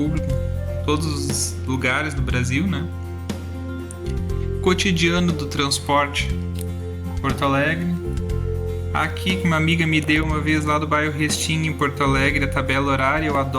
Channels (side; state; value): both; identical; correlation 1.00